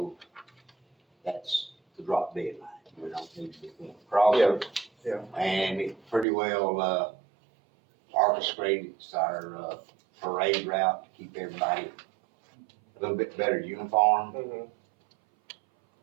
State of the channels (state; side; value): drops out; left; at 6.2 s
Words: that's the drop dead line. We don't need to be crossing. Yeah, And it pretty well, orchestrates our, parade route to keep everybody a little bit better uniform. Mhm.